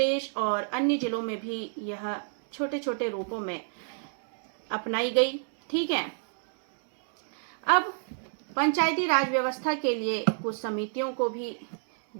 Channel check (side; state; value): left; silent; digital silence